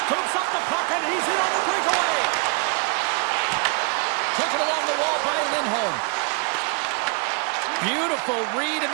Scoops up the puck, and he's in on the breakaway. Taken along the wall by Lindholm. Beautiful read in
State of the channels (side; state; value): left; quieter; 34.3 dB